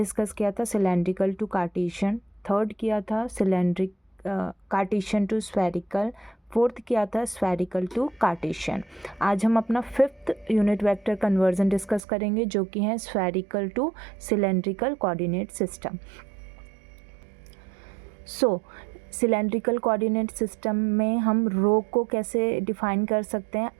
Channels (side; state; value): left; drops out; at 12.0 s